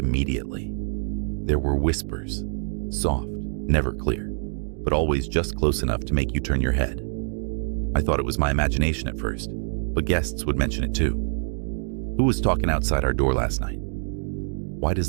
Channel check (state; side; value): silent; left; 59 dB below the other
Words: There were whispers. Soft, never clear, but always just close enough to make you turn your head. I thought it was my imagination at first, but guests would mention it too. Who was talking outside our door last night? Why does